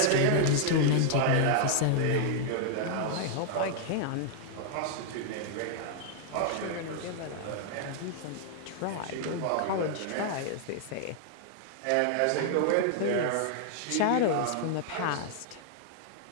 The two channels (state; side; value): different; both; correlation -0.01